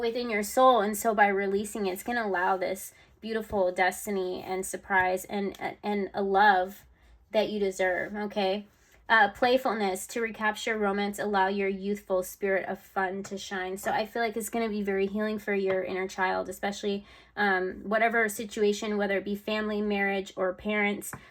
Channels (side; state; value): both; identical; correlation 1.00